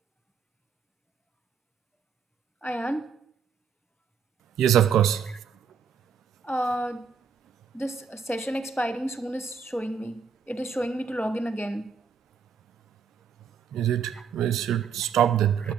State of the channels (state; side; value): quieter; left; 6.4 dB